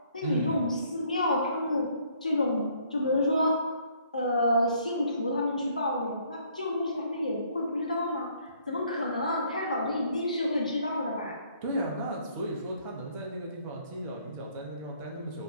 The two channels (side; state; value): both; inverted; correlation -0.64